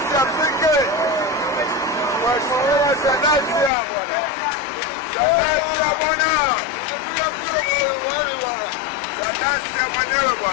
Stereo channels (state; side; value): drops out; right; at 3.7 s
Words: fike. Mheshimiwa Salasya bwana. Salasya bwana. Salasya mwenyewe